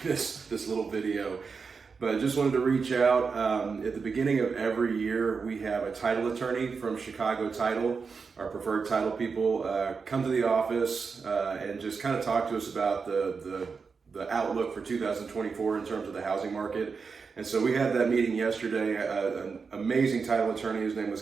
this little video. But I just wanted to reach out. At the beginning of every year, we have a title attorney from Chicago Title, our preferred title people, come to the office and just kind of talk to us about the outlook for 2024 in terms of the housing market. And so we had that meeting yesterday. An amazing title attorney. His name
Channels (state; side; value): quieter; left; 5.2 dB